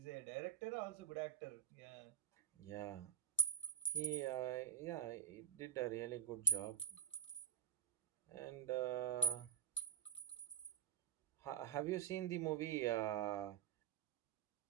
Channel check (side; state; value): left; quieter; 9.0 dB